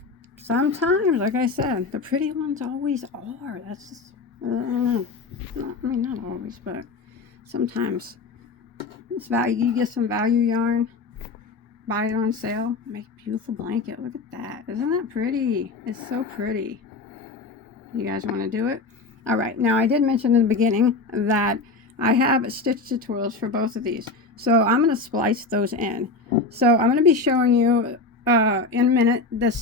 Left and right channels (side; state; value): right; quieter; 3.8 dB